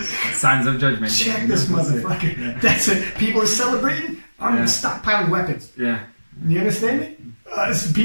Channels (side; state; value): both; inverted; correlation -1.00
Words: Signs of judgment. Check this motherfucker. Yeah. That's it. People are celebrating. I'm stockpiling weapons. Yeah. You understand me?